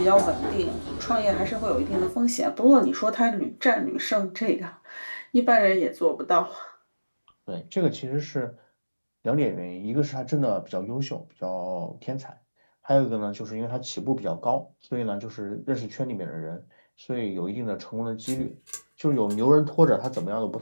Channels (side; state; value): both; inverted; correlation -1.00